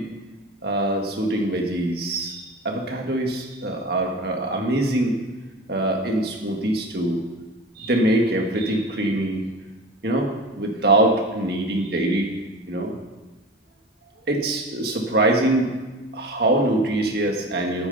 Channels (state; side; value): normal; both; correlation 0.34